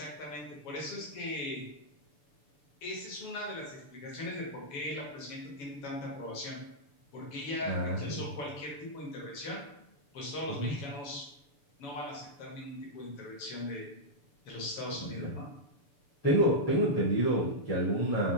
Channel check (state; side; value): late; right; 7.1 ms